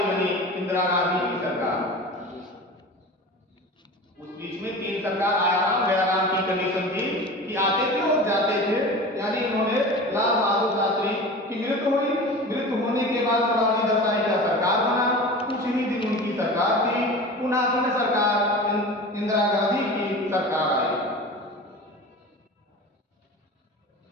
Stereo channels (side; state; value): both; normal; correlation 0.34